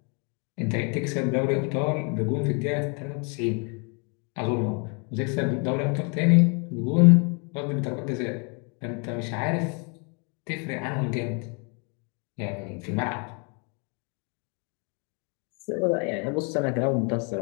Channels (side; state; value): right; quieter; 35.5 dB